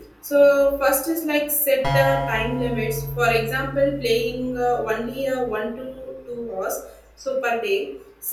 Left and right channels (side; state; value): both; identical; correlation 1.00